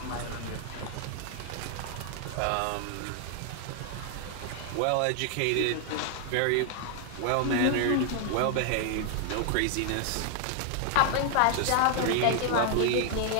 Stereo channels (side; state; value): both; different; correlation 0.00